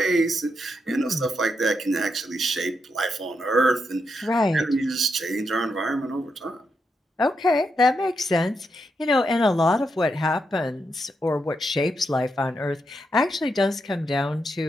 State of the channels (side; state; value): both; normal; correlation 0.82